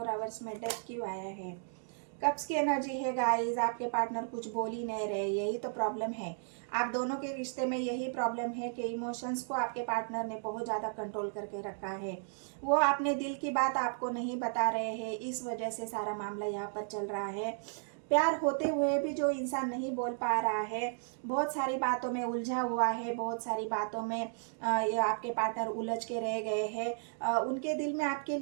आवर्स में डेथ क्यों आया है। कब्स की एनर्जी है गाइस, आपके पार्टनर कुछ बोल ही नहीं रहे, यही तो प्रॉब्लम है। आप दोनों के रिश्ते में यही प्रॉब्लम है कि इमोशंस को आपके पार्टनर ने बहुत ज़्यादा कंट्रोल करके रखा है, वो अपने दिल की बात आपको नहीं बता रहे हैं, इस वजह से सारा मामला यहाँ पर चल रहा है। प्यार होते हुए भी जो इंसान नहीं बोल पा रहा है, बहुत सारी बातों में उलझा हुआ है, बहुत सारी बातों में ये आपके पार्टनर उलझ के रह गए हैं, उनके दिल में आपके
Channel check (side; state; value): left; silent; digital silence